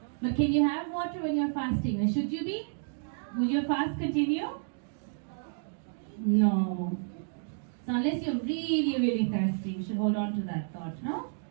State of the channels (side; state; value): left; silent; digital silence